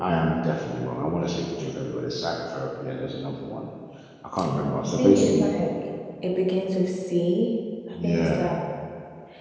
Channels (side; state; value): both; identical; correlation 1.00